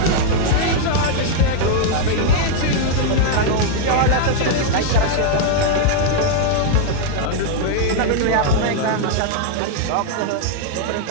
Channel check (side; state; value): both; different; correlation 0.00